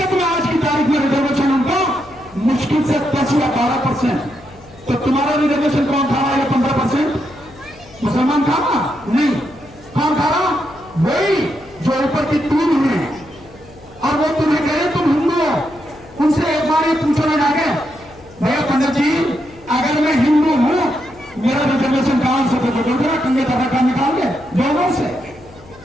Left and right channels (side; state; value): left; noise; hum, 23 dB below the sound